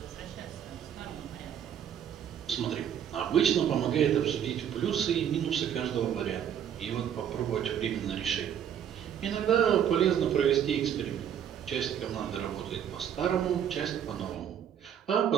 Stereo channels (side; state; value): left; quieter; 9.2 dB